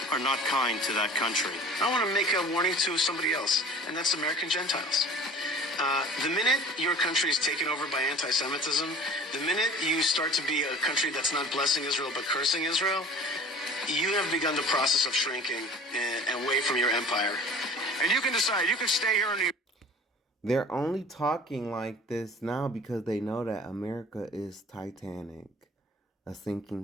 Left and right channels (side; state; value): both; normal; correlation 0.44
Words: are not kind to that country. I want to make a warning to somebody else, and that's American Gentiles. The minute your country is taken over by anti-Semitism, the minute you start to be a country that's not blessing Israel but cursing Israel, you have begun the process of shrinking and away from your empire. And you can decide, you can stay here in New York. They're only talking like this now because they know that America is Titanic, a